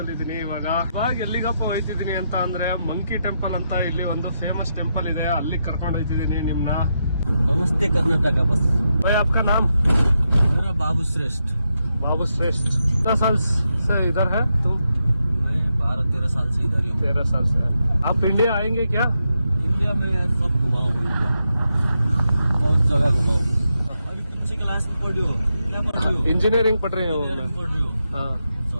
ಇದೀನಿ. ಇವಾಗ ಎಲ್ಲಿಗಪ್ಪ ಹೋಯ್ತಿದ್ದೀನಿ ಅಂತ ಅಂದ್ರೆ ಮಂಕಿ ಟೆಂಪಲ್ ಅಂತ ಇಲ್ಲಿ ಒಂದು ಫೇಮಸ್ ಟೆಂಪಲ್ ಇದೆ, ಅಲ್ಲಿ ಕರ್ಕೊಂಡು ಹೋಯ್ತಿದ್ದೀನಿ ನಿಮ್ನ. नमस्ते कर्नाटका बस। भाई आपका नाम? मेरा बाबू श्रेष्ठ। बाबू श्रेष्ठ। कितना साल से इधर है तुम? मैं 12-13 साल से इधर ही हूँ। 13 साल से। आप इंडिया आएंगे क्या? इंडिया में सब घुमा हूँ, इंडिया बहुत जगह घुमा हूँ। अभी कौन सी क्लास में पढ़ रही हो? क्या पढ़ रही हो? इंजीनियरिंग पढ़ रहे हो? इंजीनियरिंग पढ़ रही हो? हाँ।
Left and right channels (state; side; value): inverted; both; correlation -0.84